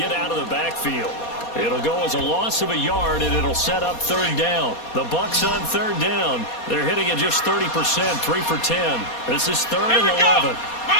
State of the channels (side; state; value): right; late; 4.2 ms